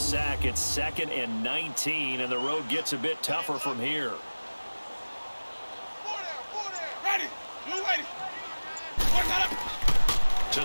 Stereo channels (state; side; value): inverted; both; correlation -1.00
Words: it's 2nd and 19, and the road gets a bit tougher from here. To